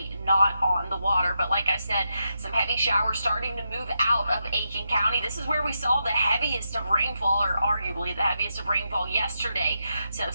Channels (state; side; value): inverted; both; correlation -0.85